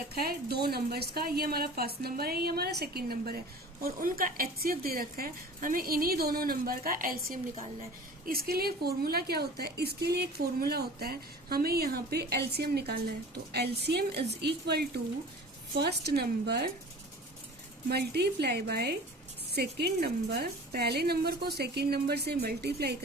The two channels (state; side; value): normal; both; correlation 0.41